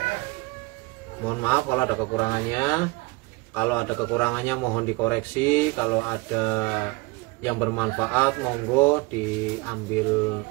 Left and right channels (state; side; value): quieter; left; 25.1 dB